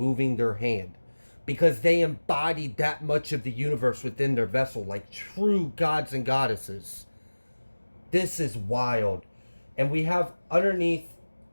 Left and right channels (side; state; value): both; inverted; correlation -1.00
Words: their hand because they embodied that much of the universe within their vessel, like true gods and goddesses. This is wild. And we have underneath